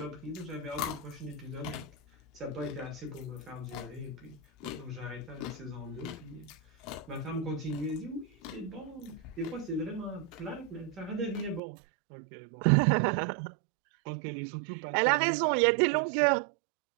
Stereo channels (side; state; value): left; drops out; at 11.6 s